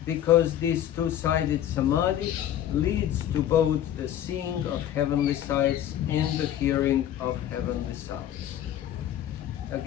Because this two-sided samadhi leads to both the seeing of heavenly sights and the hearing of heavenly sounds.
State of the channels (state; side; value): quieter; right; 11.3 dB